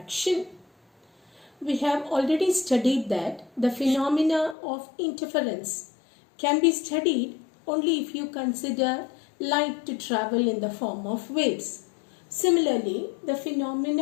We have already studied that the phenomena of interference can be studied only if you consider light to travel in the form of waves. Similarly, the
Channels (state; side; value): drops out; right; at 4.5 s